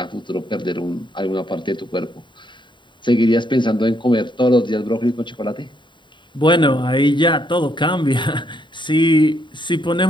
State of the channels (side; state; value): right; late; 0.23 ms